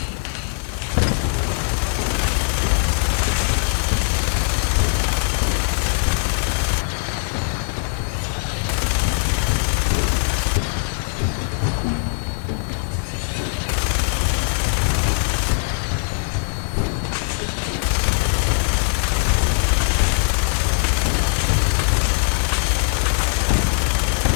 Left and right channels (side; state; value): right; silent; digital silence